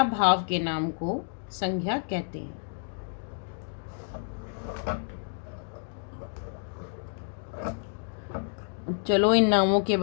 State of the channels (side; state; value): right; silent; digital silence